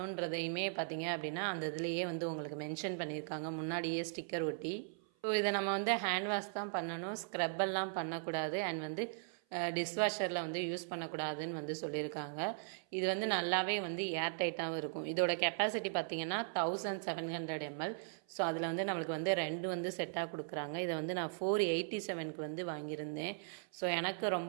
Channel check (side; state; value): left; silent; 52 dB below the other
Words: பார்த்தீங்க அப்படின்னா அந்த இதுலேயே வந்து உங்களுக்கு மென்ஷன் பண்ணியிருக்காங்க, முன்னாடியே ஸ்டிக்கர் ஒட்டி. ஸோ இதை நம்ம வந்து ஹேண்ட் வாஷ் தான் பண்ணணும், ஸ்க்ரப்பெல்லாம் பண்ணக்கூடாது. அண்ட் வந்து டிஷ்வாஷரில் வந்து யூஸ் பண்ணக்கூடாதுன்னு வந்து சொல்லியிருக்காங்க. இது வந்து நல்லாவே வந்து ஏர் டைட்டாகவும் இருக்கும். இதோட கெப்பாசிட்டி பார்த்தீங்கன்னா 1700 ml. ஸோ அதில் வந்து நம்மளுக்கு வந்து 2 வந்து செட்டாக கொடுக்குறாங்க. இதை வந்து நான் 487க்கு வந்து வாங்கியிருந்தேன். ஸோ எனக்கு